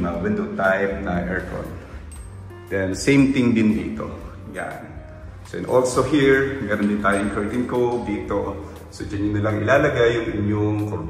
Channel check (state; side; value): identical; both; correlation 1.00